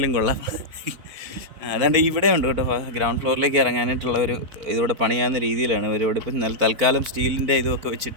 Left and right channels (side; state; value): left; late; 4.4 ms